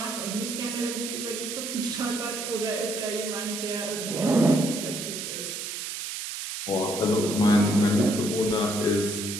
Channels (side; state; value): right; noise; hiss, 6 dB below the sound